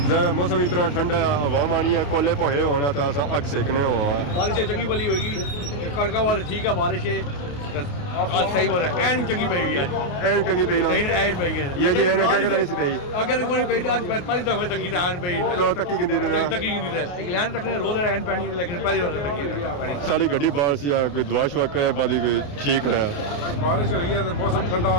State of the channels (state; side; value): late; right; 28 ms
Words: जरा मौसम इतना ठंडा है, हवा आनी है, कोले पोहे होना तो अस अग सेकने हुआ है। बारिश चंगी भली होगी कड़का वाले ठीक है बारिश है आज सही बात है एन चंगी पई हुई आज चंगी पई ना नहीं एन पई है ये जी एन जगह नहीं सी पई अगर कोई पई आज पहली दफा तकी एन पई तो तकी किंदी ने तकी किंदी है इंग्लैंड रखने रोज एन पानी लेकिन पहली बार तकी पानी सारी गड्डी बाहर सी कोई दुआ शुआ करे बाद ठीक है। बारिश हुई है तो मौसम ठंडा